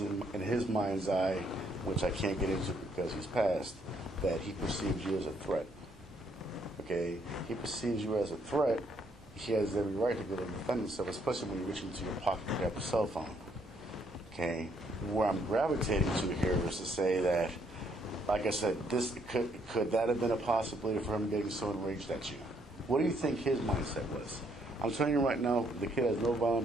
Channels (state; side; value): normal; both; correlation 0.70